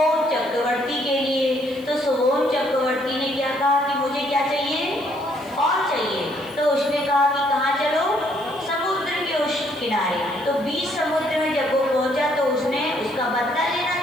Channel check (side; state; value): left; noise; hiss, 25 dB below the sound